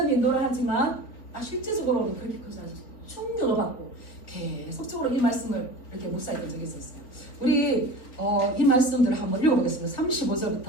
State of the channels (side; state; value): right; late; 4.1 ms